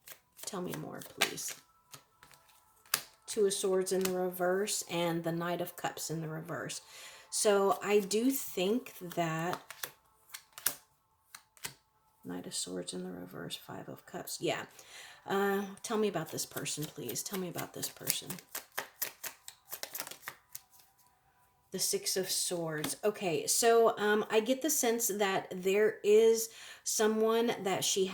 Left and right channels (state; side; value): identical; both; correlation 1.00